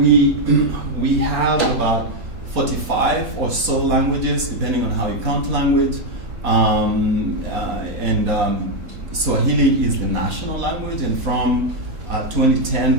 have about 45 or so languages, depending on how you count language. Swahili is the national language, and from 2010,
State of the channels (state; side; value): late; left; 4.1 ms